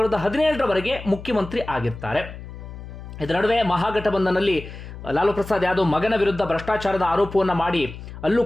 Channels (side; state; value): left; noise; hum, 13 dB below the sound